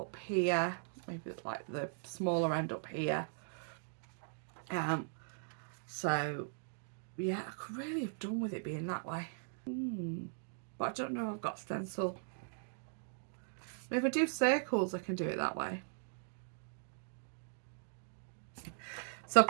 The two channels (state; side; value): silent; left; digital silence